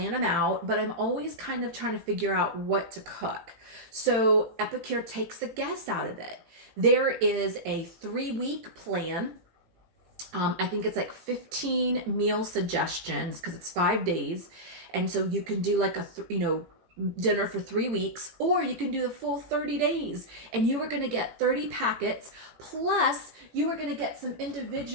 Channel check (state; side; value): late; left; 18 ms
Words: them out, but I'm always kind of trying to figure out what to cook. So Epicure takes the guess out of it. There is a 3-week plan. I think it's like 15 meal suggestions because it's 5 days. And so you can do like a, dinner for 3 weeks, or you can do the full 30 days, and you are going to get 30 packets, plus you are going to get some